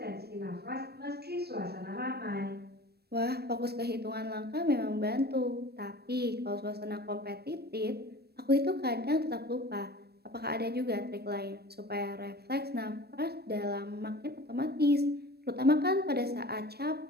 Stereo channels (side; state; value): left; late; 0.47 ms